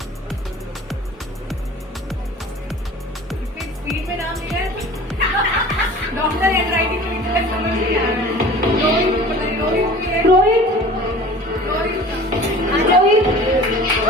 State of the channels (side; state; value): both; normal; correlation 0.42